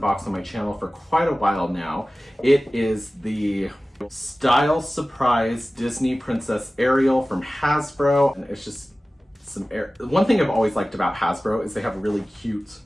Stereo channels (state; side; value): normal; both; correlation 0.97